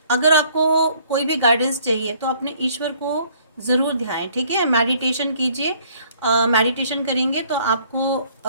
अगर आपको कोई भी गाइडेंस चाहिए तो अपने ईश्वर को ज़रूर ध्याएं, ठीक है। मेडिटेशन कीजिए, मेडिटेशन करेंगे तो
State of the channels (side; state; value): both; inverted; correlation -0.60